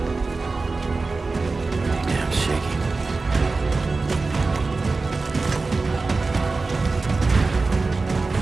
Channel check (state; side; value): quieter; left; 3.8 dB